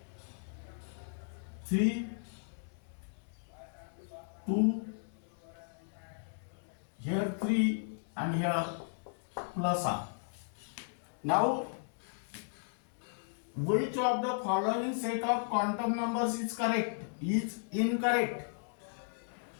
3, 2, here 3 and here plus half. Now, which of the following set of quantum numbers is correct? Is incorrect.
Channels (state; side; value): silent; right; digital silence